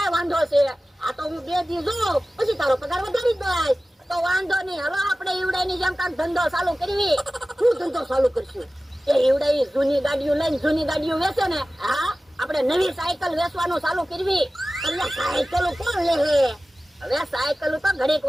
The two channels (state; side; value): normal; both; correlation 0.96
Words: વાંધો છે? આ તો હું 2 દી જોઉં પછી તારો પગાર વધારી દઈશ. તો વાંધો નહીં. હાલો આપણે ઈવડાની જેમ કાંક ધંધો ચાલુ કરવી. શું ધંધો ચાલુ કરશું? એ ઈવડા જૂની ગાડીઓ લઈને જૂની ગાડીઓ વેચે ને, હા આપણે નવી સાયકલ વેચવાનું ચાલુ કરવી. એટલે સાયકલ કોણ લે? હવે સાયકલ તો ઘડીક